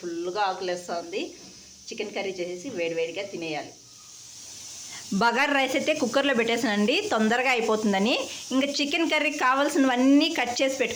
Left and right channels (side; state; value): both; identical; correlation 1.00